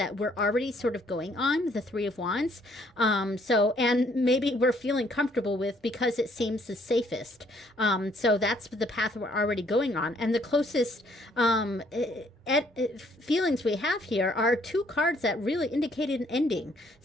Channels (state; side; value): normal; both; correlation 0.65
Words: we're already sort of going on, the 3 of Wands. So, and maybe we're feeling comfortable with because it seems the safest. So that's the path we're already going on. And the closest feelings we have here are 2 cards that really indicated an ending.